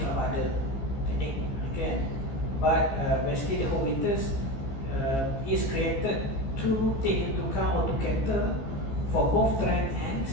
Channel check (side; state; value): right; late; 15 ms